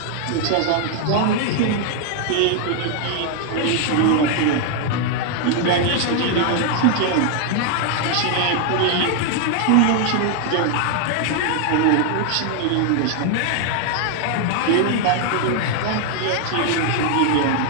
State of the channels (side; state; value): both; different; correlation 0.00